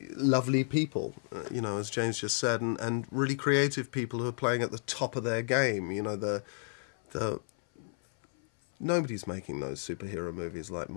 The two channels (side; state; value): right; silent; 56 dB below the other